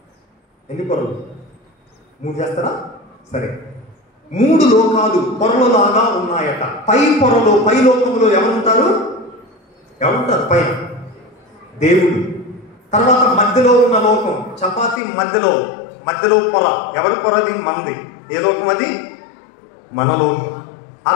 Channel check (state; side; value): drops out; right; at 15.0 s